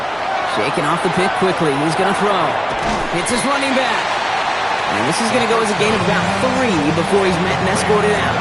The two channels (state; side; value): identical; both; correlation 1.00